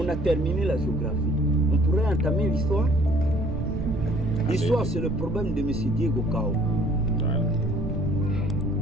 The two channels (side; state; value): right; noise; rumble, 6 dB below the sound